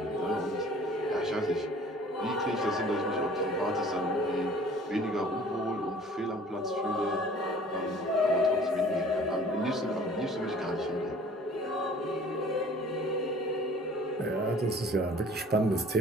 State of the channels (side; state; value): both; normal; correlation 0.50